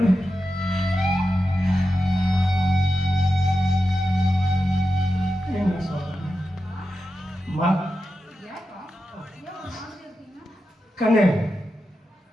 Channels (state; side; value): normal; both; correlation 0.90